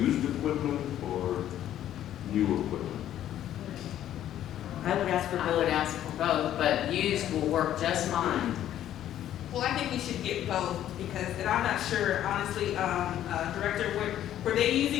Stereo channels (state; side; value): quieter; right; 11.7 dB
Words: equipment or new equipment? I would ask for I would both. ask for both, but used will work just fine. Well, I think we should get both, because, and I'm not sure, honestly, Director, were they